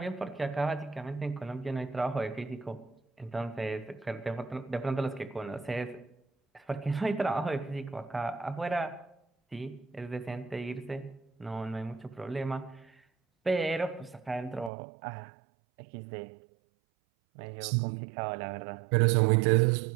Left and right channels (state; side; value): drops out; left; at 14.7 s